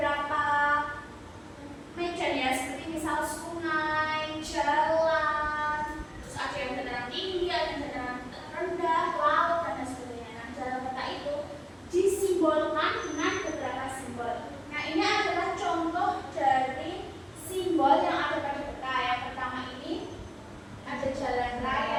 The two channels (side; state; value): both; identical; correlation 1.00